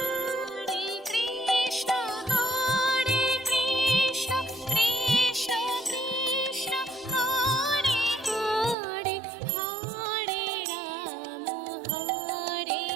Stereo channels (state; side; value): drops out; left; at 8.8 s